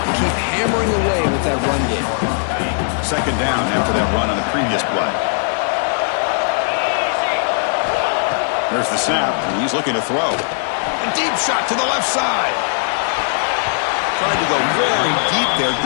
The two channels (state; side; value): silent; right; 67 dB below the other